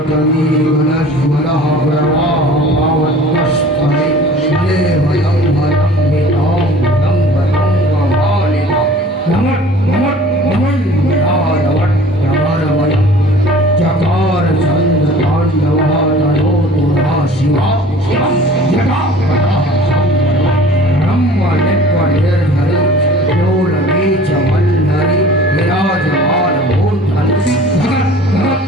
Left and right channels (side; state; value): both; normal; correlation 0.46